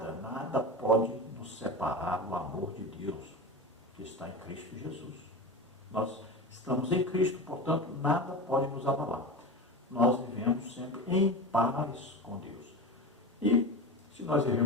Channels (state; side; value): normal; both; correlation 0.26